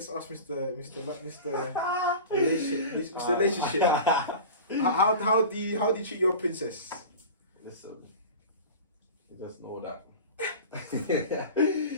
ask Mr. Relationship. How do you treat your princess? Listen, you just know that.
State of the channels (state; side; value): inverted; both; correlation -0.34